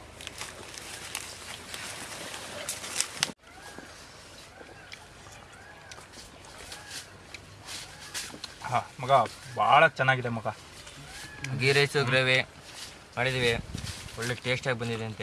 ಮಗ ಭಾಳ ಚೆನ್ನಾಗಿದೆ ಮಗ. ಗೀ ರೈಸು ಗ್ರೇವಿ ಮಾಡಿದ್ದೀವಿ, ಒಳ್ಳೆ ಟೇಸ್ಟಾಗಿ ಬಂದಿದೆ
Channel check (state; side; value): identical; both; correlation 1.00